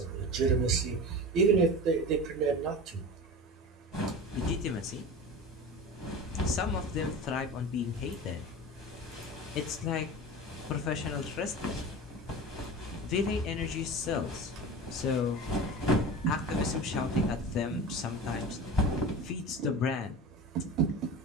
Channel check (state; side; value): normal; both; correlation 0.31